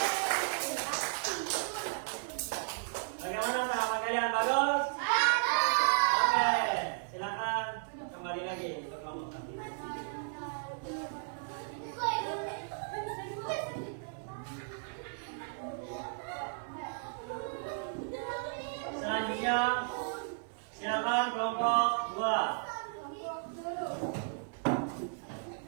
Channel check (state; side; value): silent; left; 55 dB below the other